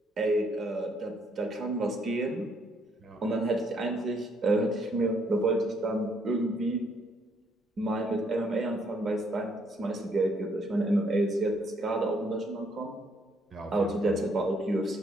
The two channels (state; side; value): normal; both; correlation 0.69